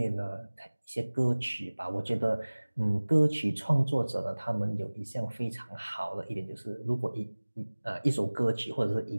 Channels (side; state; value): both; inverted; correlation -1.00